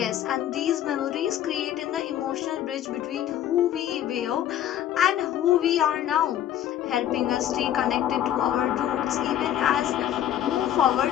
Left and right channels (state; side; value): quieter; right; 11.2 dB